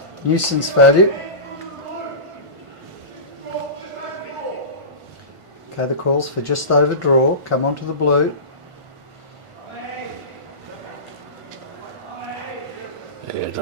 value. Okay, the calls for just over draw, come onto the blue. Yeah, I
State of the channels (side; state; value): left; late; 1.5 ms